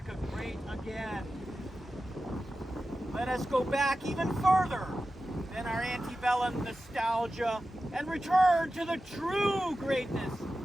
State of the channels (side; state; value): both; normal; correlation 0.93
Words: great again, let us go back even further than our antebellum nostalgia and return to the true greatness